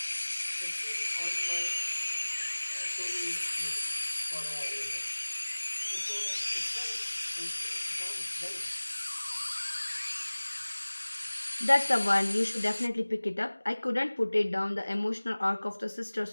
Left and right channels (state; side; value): inverted; both; correlation -1.00